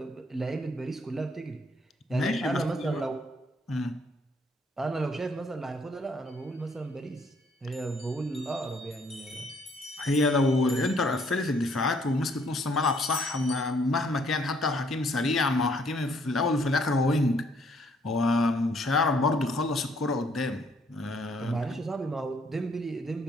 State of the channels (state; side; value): normal; both; correlation 0.65